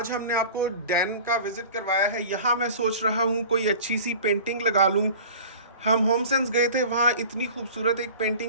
हमने आपको डैन का विज़िट करवाया है। यहाँ मैं सोच रहा हूँ कोई अच्छी सी पेंटिंग लगा लूँ हम होम सेंस गए थे, वहाँ इतनी खूबसूरत एक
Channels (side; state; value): both; inverted; correlation -0.41